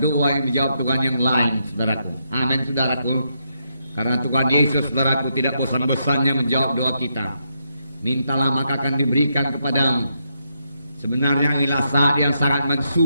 yang dijawab Tuhan yang lain, saudaraku. Amin, saudaraku. Karena Tuhan Yesus, saudaraku, tidak bosan-bosannya menjawab doa kita. Mintalah maka akan diberikan kepadamu. Sebenarnya inilah saat yang sangat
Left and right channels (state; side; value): inverted; both; correlation -0.80